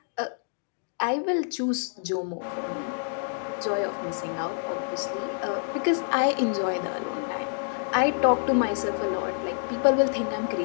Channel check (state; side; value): silent; right; digital silence